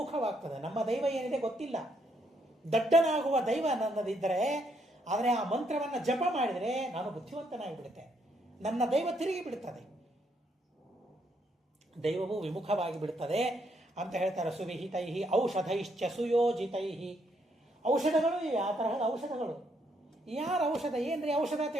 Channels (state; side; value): normal; both; correlation 0.74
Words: ನಮ್ಮ ದೈವ ಏನಿದೆ ಗೊತ್ತಿಲ್ಲ, ದಡ್ಡನಾಗುವ ದೈವ ನನ್ನದಿದ್ದರೆ, ಆದರೆ ಆ ಮಂತ್ರವನ್ನು ಜಪ ಮಾಡಿದರೆ ನಾನು ಬುದ್ಧಿವಂತನಾಗಿ ಬಿಡುತ್ತೆ, ನನ್ನ ದೈವ ತಿರುಗಿ ಬಿಡುತ್ತದೆ, ದೈವವು ವಿಮುಖವಾಗಿ ಬಿಡುತ್ತದೆ ಅಂತ ಹೇಳ್ತಾರೆ. ಸುವಿಹಿತೈ ಔಷಧೈಶ್ಚ ಸುಯೋಜಿತೈ, ಔಷಧಗಳು ಇವೆ, ಆ ತರಹದ ಔಷಧಗಳು. ಯಾರ ಔಷಧ ಏನ್ರಿ ಔಷಧ